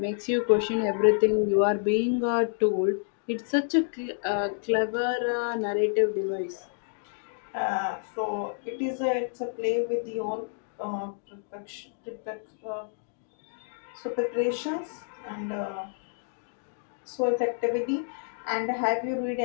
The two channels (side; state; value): right; silent; digital silence